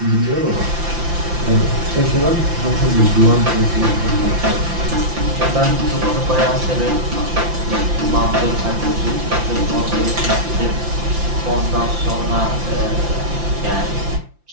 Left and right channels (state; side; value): late; left; 5.8 ms